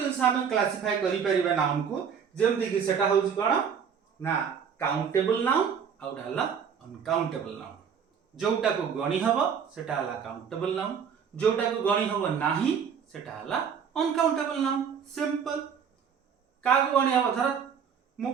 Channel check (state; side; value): quieter; left; 7.2 dB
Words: हम क्लासिफाई करि परिबा नाउन को, जेमति कि सेटा होची कोन ना काउंटेबल नाउन आ गोटे हला अनकाउंटेबल नाउन। जोटा को गणी हबो सेटा हला काउंटेबल नाउन, जोटा को गणी हबो नाही सेटा हला अनकाउंटेबल नाउन। सिंपल। का को गणी हबो धर मु